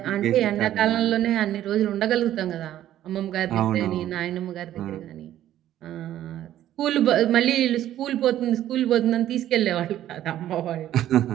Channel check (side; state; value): left; quieter; 12.4 dB